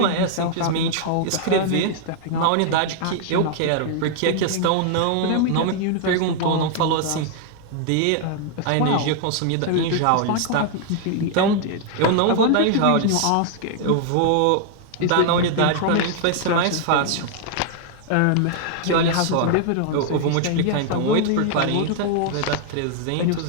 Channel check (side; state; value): both; different; correlation 0.00